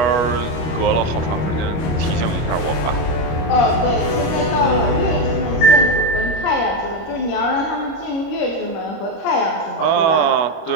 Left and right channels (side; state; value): right; late; 25 ms